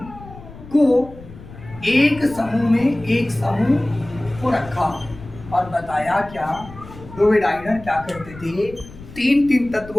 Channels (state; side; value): noise; left; rumble, 17 dB below the sound